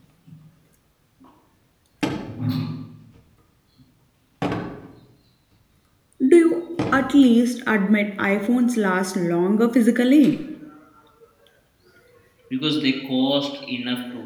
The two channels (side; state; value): both; identical; correlation 1.00